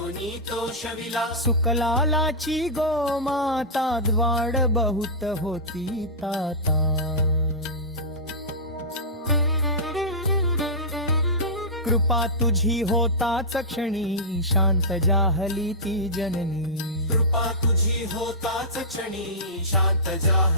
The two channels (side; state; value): both; normal; correlation -0.15